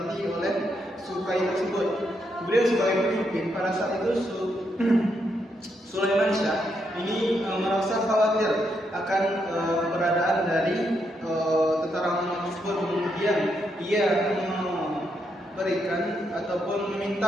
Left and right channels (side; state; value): both; normal; correlation 0.79